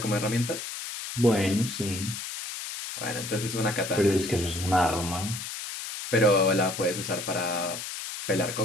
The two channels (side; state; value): left; noise; hiss, 7 dB below the sound